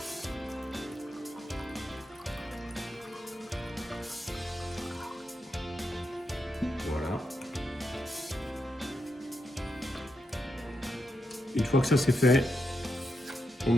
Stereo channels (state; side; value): normal; both; correlation 0.84